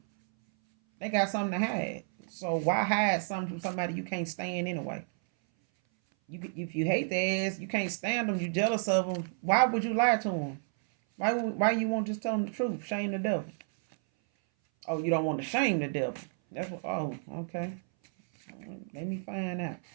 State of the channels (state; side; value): silent; left; 57 dB below the other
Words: they got something to hide. So why hide something from somebody you can't stand anyway? If you hate their ass, you can't stand them, you jealous of them. Why would you lie to them? Why you won't just tell them the truth? Shame the devil. Oh, you don't want to shame the devil. That's what. Oh, okay. Let me find out.